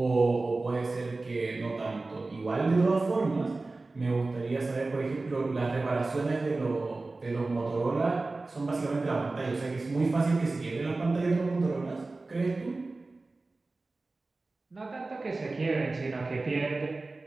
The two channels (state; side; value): quieter; left; 3.4 dB